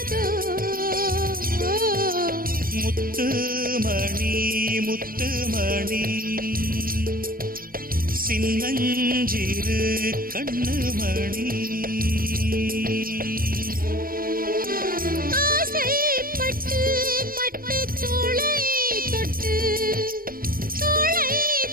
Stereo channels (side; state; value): left; late; 0.42 ms